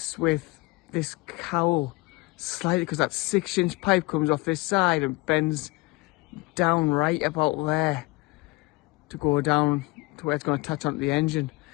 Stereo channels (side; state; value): right; quieter; 24.7 dB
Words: with this cowl slightly, because that 6-inch pipe comes off this side and bends down right about there to go down to where it's going to touch onto the engine.